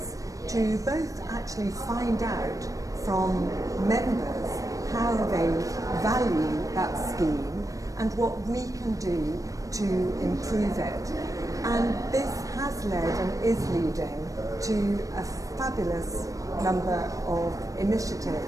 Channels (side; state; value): left; late; 0.16 ms